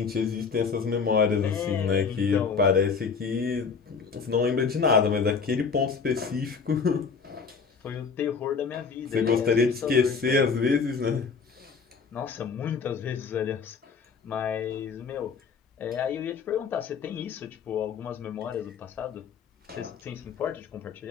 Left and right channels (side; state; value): right; quieter; 5.5 dB